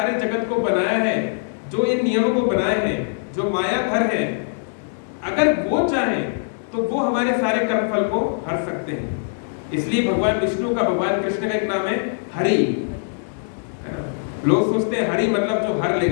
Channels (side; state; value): right; silent; digital silence